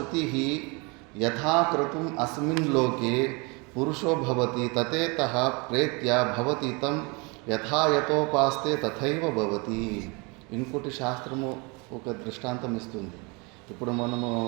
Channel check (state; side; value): quieter; left; 29.7 dB